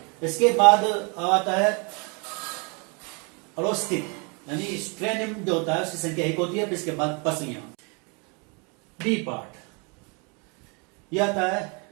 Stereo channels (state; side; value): quieter; left; 32.7 dB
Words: इसके बाद आता है अरोस्टिक यानी स्ट्रेनियम जो होता है उसकी संख्या 1 होती है। फिर इसके बाद पसलियां। बी पार्ट यह आता है